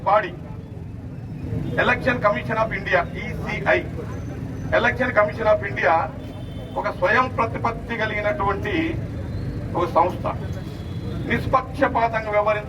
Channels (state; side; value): identical; both; correlation 1.00